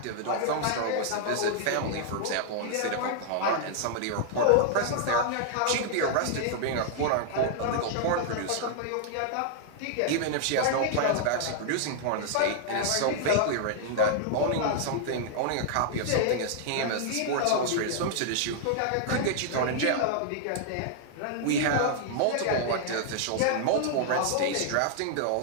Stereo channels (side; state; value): both; different; correlation -0.01